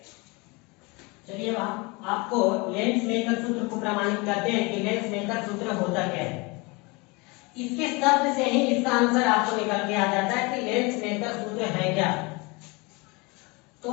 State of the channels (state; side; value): quieter; right; 27.0 dB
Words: चलिए आपको लेंस मेकर सूत्र को प्रमाणित करते हैं कि लेंस मेकर सूत्र होता क्या है। इसके शब्द से ही इसका आंसर आपको निकल के आ जाता है कि लेंस मेकर सूत्र है क्या। तो